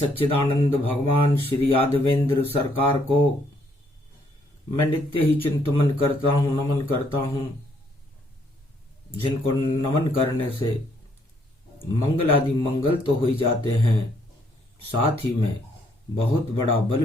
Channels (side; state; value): both; normal; correlation 0.69